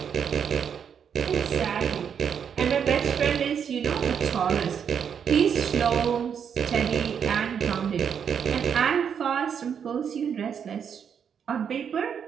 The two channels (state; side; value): quieter; left; 7.6 dB